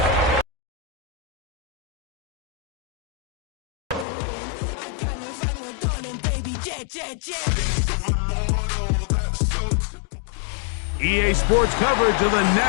EA Sports coverage of the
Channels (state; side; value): drops out; right; at 4.0 s